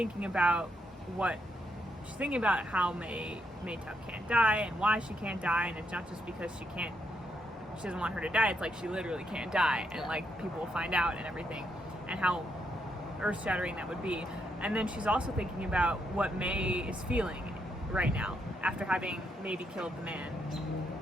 about how May Tuck can't die and why she can't die, and it's not just because she doesn't want her to die, it's like she literally can't die, and like people will find out and everything, and how earth-shattering that would be. And then she's also thinking about what May is feeling right now after having maybe killed the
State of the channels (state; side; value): normal; both; correlation 0.78